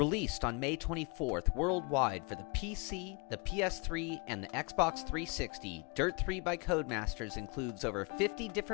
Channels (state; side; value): quieter; right; 31.5 dB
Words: on May 24th worldwide for the PC, the PS3, and the Xbox 360, Dirt 3 by Codemasters includes over 50